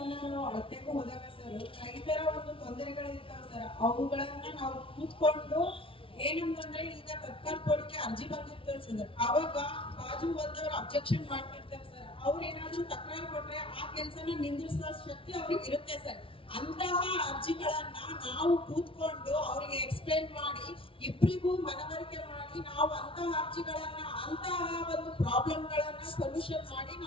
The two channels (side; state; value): right; late; 0.26 ms